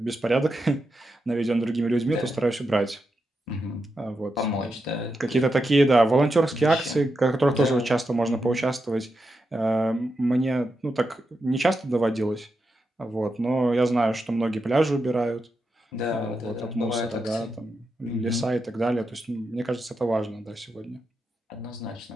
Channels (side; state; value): both; normal; correlation 0.86